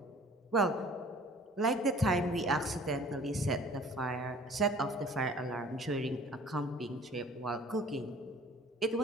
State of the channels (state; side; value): normal; both; correlation 0.50